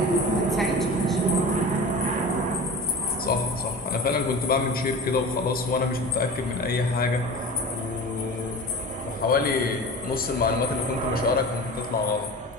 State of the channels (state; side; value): normal; both; correlation 0.35